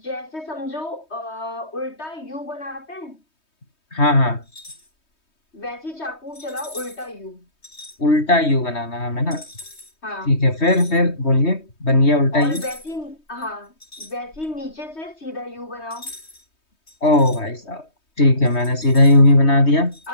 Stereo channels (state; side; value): late; right; 3.2 ms